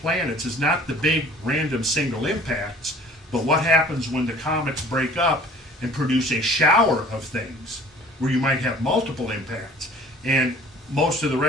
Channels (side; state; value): both; normal; correlation 0.50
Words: is not the big random single impacts, but what happens when the comets break up and produce a shower of things where you might have multiple impacts. And most of the